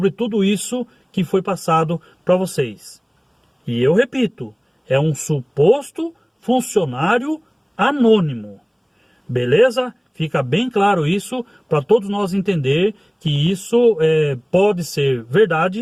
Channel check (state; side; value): identical; both; correlation 1.00